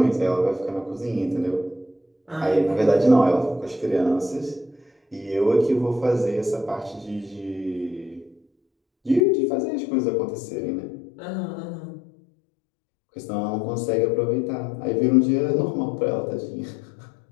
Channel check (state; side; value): drops out; right; at 9.2 s